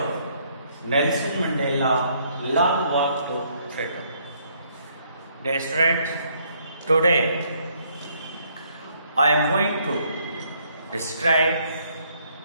Nelson Mandela, Long Walk to Freedom. Dear students, today I am going to describe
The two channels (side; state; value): both; inverted; correlation -0.68